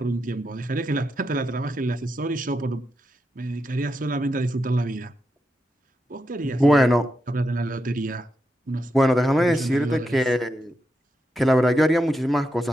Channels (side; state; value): both; normal; correlation 0.85